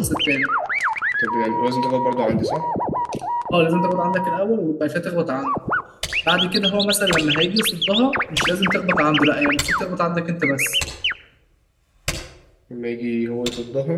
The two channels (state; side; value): identical; both; correlation 1.00